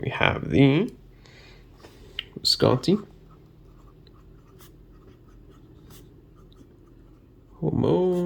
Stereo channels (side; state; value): both; identical; correlation 1.00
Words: have the Visconti